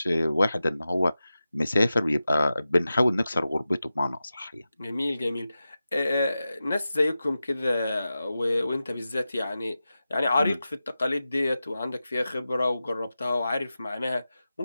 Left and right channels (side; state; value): both; inverted; correlation -0.93